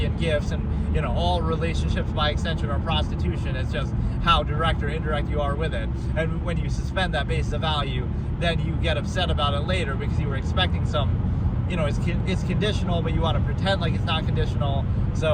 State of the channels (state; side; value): identical; both; correlation 1.00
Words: and gifts, and, all relationships by extension are prostitution. It's just how direct or indirect you are with it. And when you suspend that basis of value, then you get upset about it later because you were expecting some, it's conditional, but you want to pretend like it's not conditional.